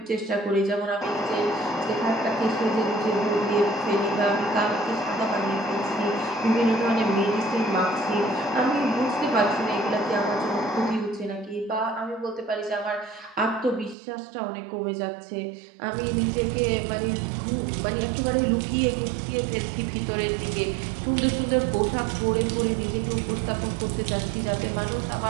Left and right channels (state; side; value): drops out; left; at 14.0 s